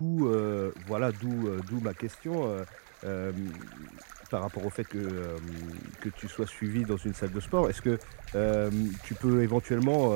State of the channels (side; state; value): left; silent; digital silence